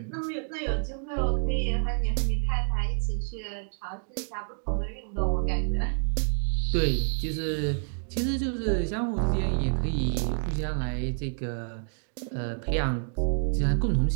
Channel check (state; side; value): silent; left; 58 dB below the other